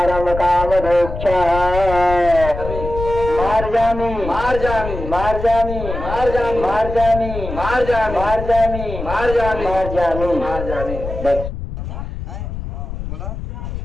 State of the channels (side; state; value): left; noise; rumble, 7 dB below the sound